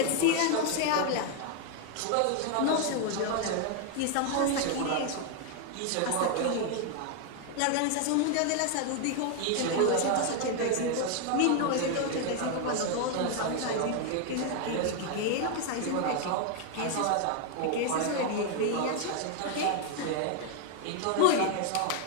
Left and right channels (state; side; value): different; both; correlation 0.01